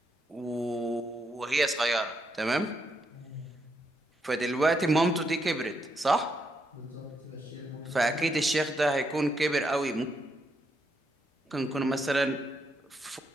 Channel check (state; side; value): normal; both; correlation 0.79